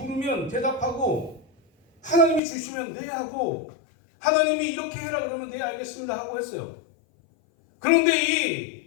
대답하고 하나님이 주시면 네 하고 하나님이 이렇게 해라 그러면 네 알겠습니다 하고 했어요. 그런데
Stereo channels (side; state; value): right; drops out; at 2.4 s